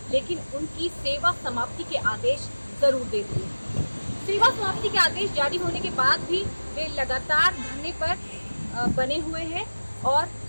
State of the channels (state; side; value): inverted; both; correlation -1.00